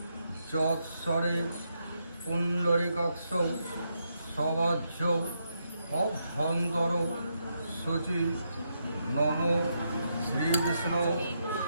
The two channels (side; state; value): both; inverted; correlation -0.81